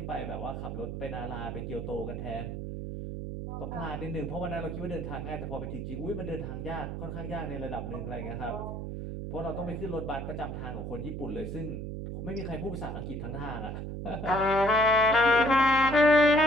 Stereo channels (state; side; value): noise; right; hum, 6 dB below the sound